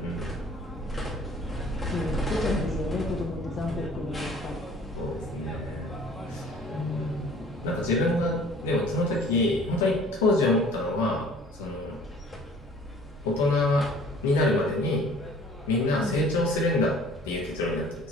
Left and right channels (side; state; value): both; normal; correlation 0.51